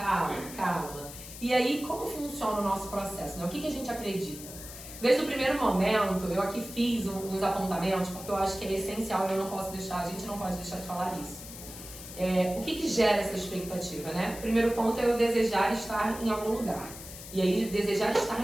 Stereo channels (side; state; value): left; noise; hiss, 13 dB below the sound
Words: calma. E aí, como funciona o nosso processo, né? O que a gente acredita? Desde o primeiro momento, eu aqui fiz uns apontamentos, porque eu acho que é essencial e eu não posso deixar, a gente não pode deixar de falar isso. O que gera essa expectativa, né? O primeiro ponto é eu desejar estar em algum lugar. E aí, desejar estar